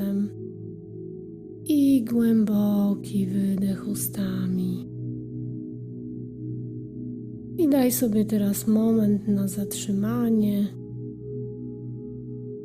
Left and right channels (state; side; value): identical; both; correlation 1.00